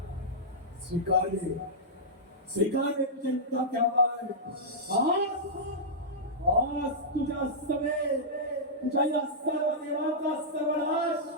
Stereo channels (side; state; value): both; normal; correlation -0.12